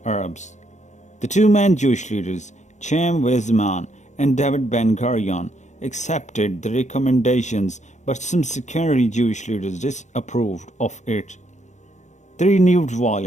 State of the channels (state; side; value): late; right; 0.34 ms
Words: Arabs. The two main Jewish leaders, Chaim Weizmann and David Ben-Gurion, accepted the recommendations, but some secondary Jewish leaders disapproved of it. The renewed